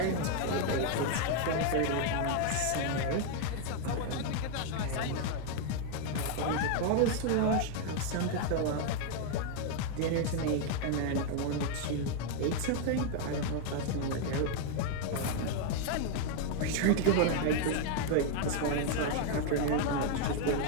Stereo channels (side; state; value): both; different; correlation 0.00